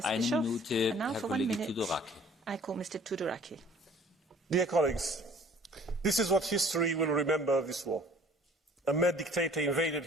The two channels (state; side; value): normal; both; correlation 0.53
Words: Bischoff. And now for 1 minute, I call Mr. Tudoraki. Dear colleagues, this is what history will remember of this war. A mad dictator invaded